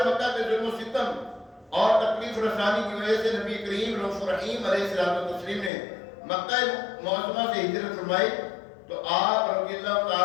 مکہ کے ظلم و ستم اور تکلیف رسانی کی وجہ سے نبی کریم رؤوف رحیم علیہ الصلوۃ والتسلیم نے مکہ معظمہ سے ہجرت فرمائی تو آپ رضی اللہ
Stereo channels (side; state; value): right; drops out; at 5.7 s